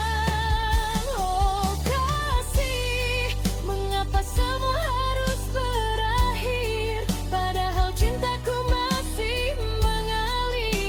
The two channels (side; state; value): both; identical; correlation 1.00